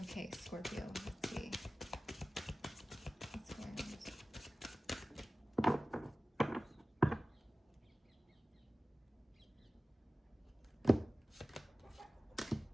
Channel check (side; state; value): both; normal; correlation 0.97